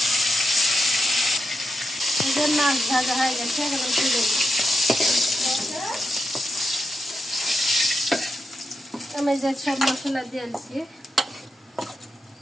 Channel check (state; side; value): normal; both; correlation 0.85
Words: মাছ ভাজা হয়ে গেছে, এখন তুলে দিব। আমি যে সব মশলা দিয়েছি